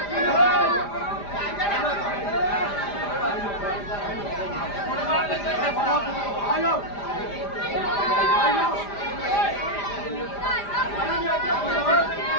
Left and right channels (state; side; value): late; right; 5.0 ms